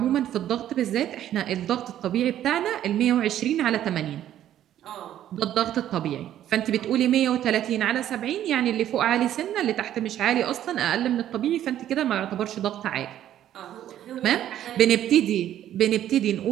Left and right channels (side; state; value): left; quieter; 11.6 dB